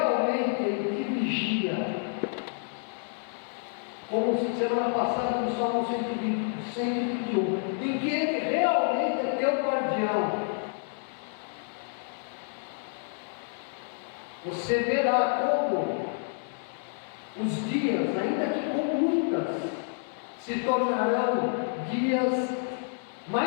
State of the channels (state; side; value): silent; right; 59 dB below the other